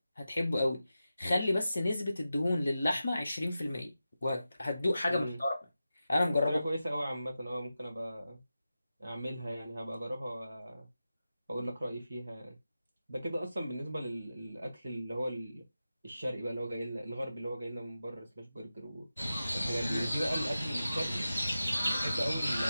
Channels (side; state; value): both; inverted; correlation -0.92